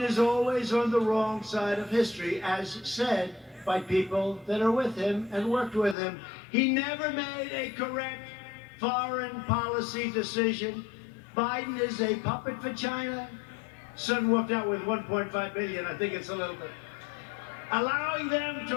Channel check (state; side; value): drops out; right; at 6.0 s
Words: is always on the wrong side of history, as said by people that are with him and worked with him. He never made a correct foreign policy decision. Biden is a puppet for China. Son walked out with $1.5 billion. I think it's a little bit. Allowing them